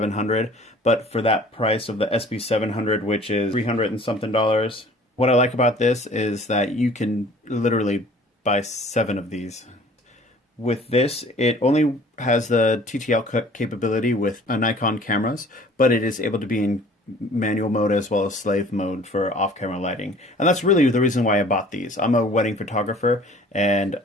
But for that price of the SB700, which is $300 and something, what I like about this is that you can literally buy 7 of these. With this, it only has the TTL capability with Nikon cameras, but it is able to be in manual mode as well as slave mode for off-camera lighting. And that's really the reason why I bought these. I'm a wedding photographer, and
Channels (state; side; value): normal; both; correlation 0.51